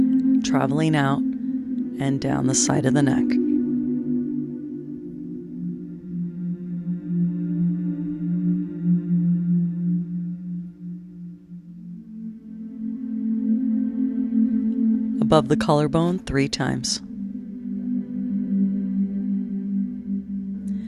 traveling out and down the side of the neck. Above the collarbone 3 times.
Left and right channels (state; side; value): identical; both; correlation 1.00